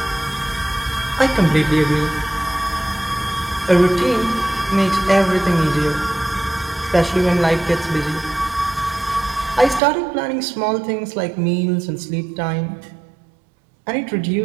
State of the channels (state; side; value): drops out; left; at 9.8 s